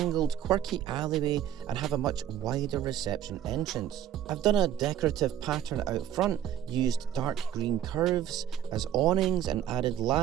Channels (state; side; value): quieter; left; 10.7 dB